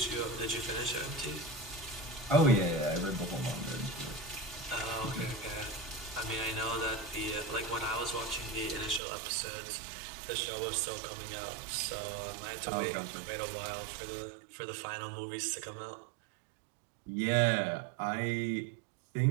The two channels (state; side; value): drops out; left; at 9.0 s